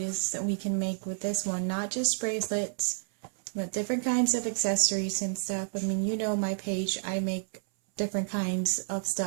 that we can make with this one, not just bracelets, but different kinds of accessories and stuff. I mean, you know my page, I make different kinds of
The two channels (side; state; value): left; silent; 58 dB below the other